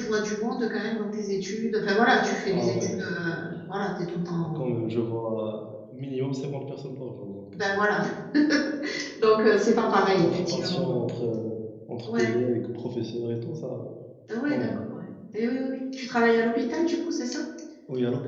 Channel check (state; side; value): identical; both; correlation 1.00